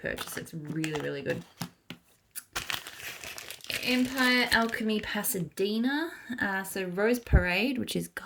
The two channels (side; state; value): both; identical; correlation 1.00